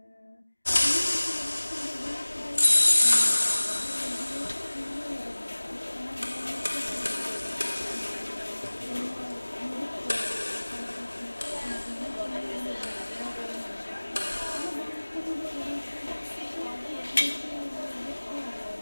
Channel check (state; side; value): inverted; both; correlation -1.00